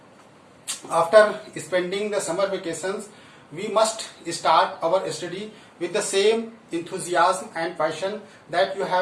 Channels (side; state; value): both; identical; correlation 1.00